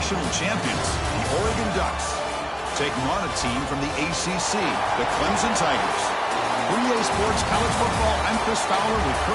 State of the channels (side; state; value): both; identical; correlation 1.00